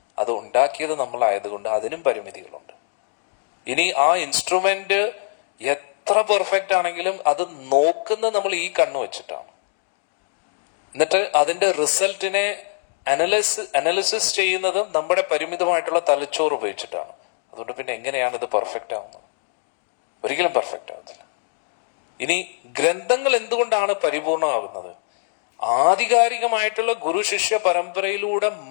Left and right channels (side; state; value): right; silent; digital silence